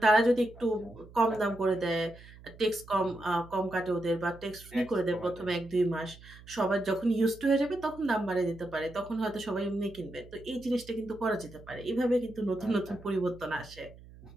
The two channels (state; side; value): noise; right; hum, 20 dB below the sound